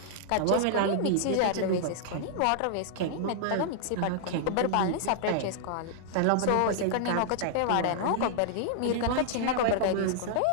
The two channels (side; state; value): both; different; correlation -0.01